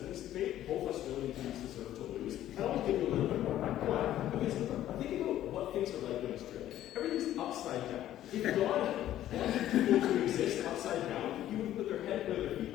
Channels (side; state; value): right; quieter; 12.7 dB